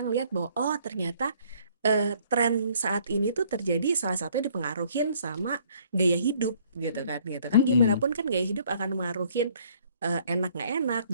ngelihat bahwa oh ternyata tren saat ini tuh terjadi salah satunya dipengaruhin sama gaya hidup gitu kan gitu kan gimana Mm-mm. pun kan gaya hidup akan mengaruhin enak nggak enak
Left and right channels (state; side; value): inverted; both; correlation -0.62